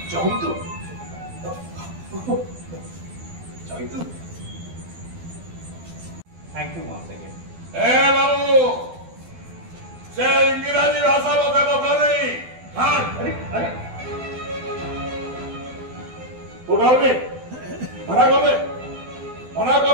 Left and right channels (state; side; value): late; left; 12 ms